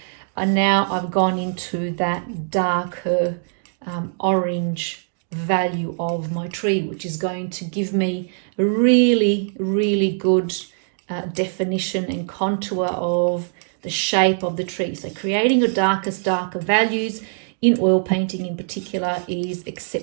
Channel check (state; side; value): silent; left; digital silence